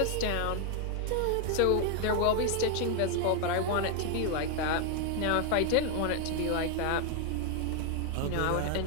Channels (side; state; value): both; different; correlation 0.00